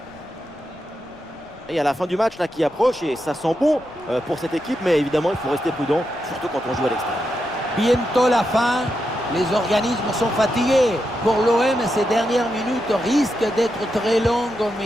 Et à la fin du match là qui approche et ça sent bon pour cette équipe, mais évidemment il faut rester prudent, surtout quand on joue à l'extérieur. Bientôt la fin. Les organismes sont fatigués. Pour l'OM, ces dernières minutes risquent d'être très longues,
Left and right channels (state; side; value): noise; left; rumble, 27 dB below the sound